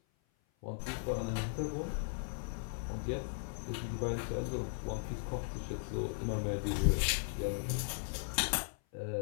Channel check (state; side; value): silent; right; 53 dB below the other